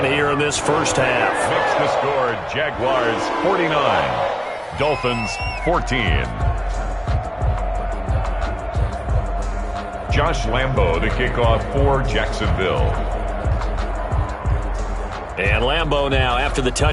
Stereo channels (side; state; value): both; identical; correlation 1.00